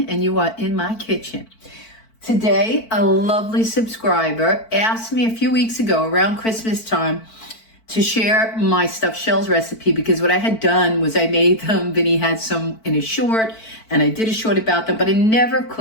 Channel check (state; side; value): late; right; 4.5 ms